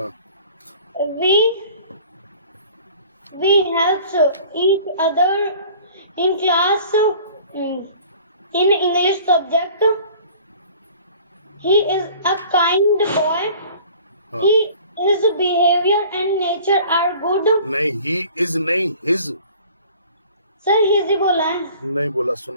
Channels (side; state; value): both; inverted; correlation -0.48